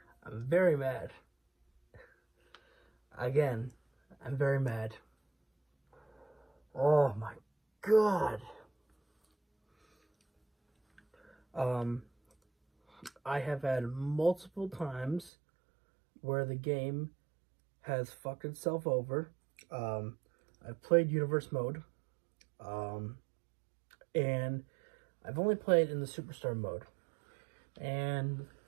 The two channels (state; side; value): drops out; left; at 15.3 s